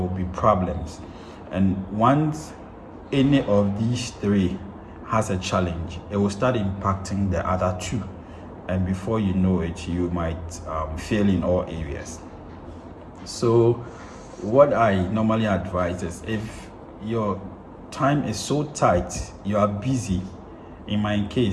be problems. And once any of these three has a challenge, it will start impacting the other two. And before you know it, you might fail in all areas. So what I normally advise is, if your time is so tight, you are busy. In my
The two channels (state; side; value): identical; both; correlation 1.00